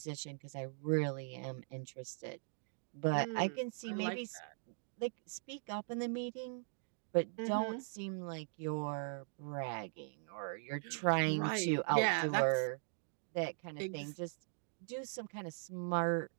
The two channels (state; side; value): silent; left; digital silence